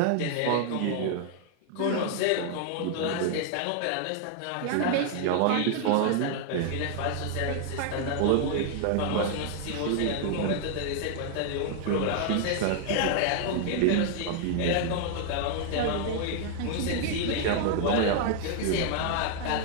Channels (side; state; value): both; different; correlation 0.00